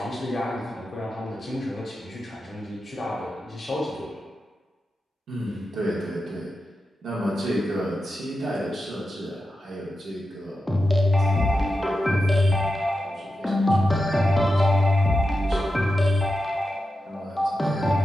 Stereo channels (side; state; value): both; normal; correlation 0.90